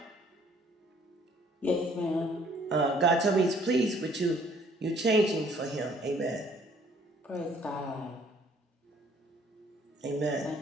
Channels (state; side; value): normal; both; correlation 0.60